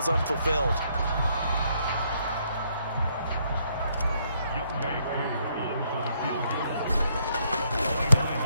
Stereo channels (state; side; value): inverted; both; correlation -0.71